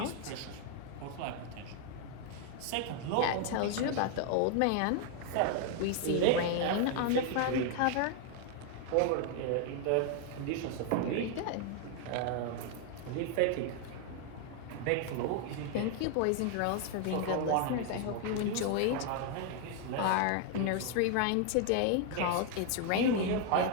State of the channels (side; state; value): both; different; correlation 0.00